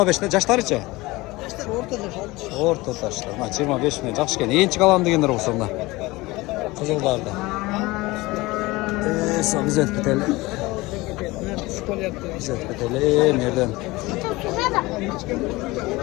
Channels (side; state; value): right; quieter; 21.1 dB